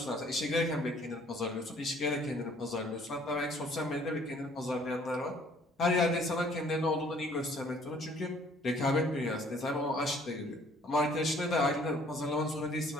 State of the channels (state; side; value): normal; both; correlation 0.58